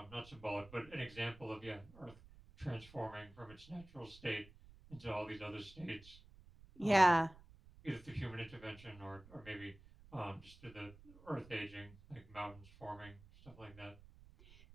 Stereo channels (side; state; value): right; noise; rumble, 21 dB below the sound